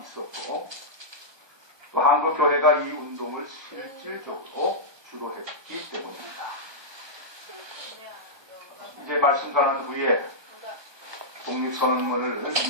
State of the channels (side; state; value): left; late; 1.2 ms